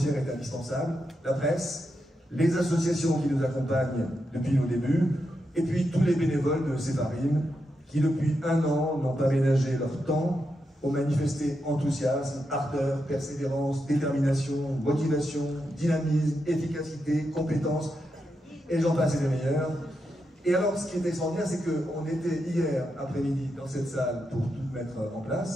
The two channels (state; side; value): normal; both; correlation 0.85